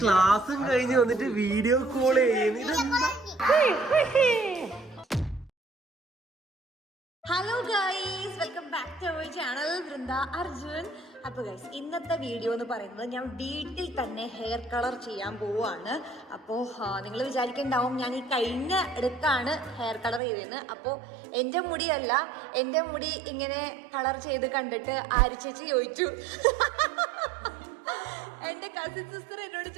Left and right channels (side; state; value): left; drops out; at 20.2 s